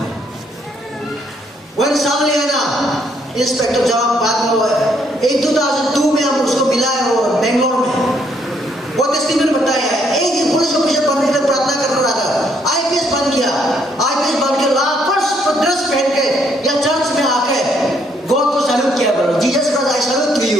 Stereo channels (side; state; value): both; normal; correlation 0.70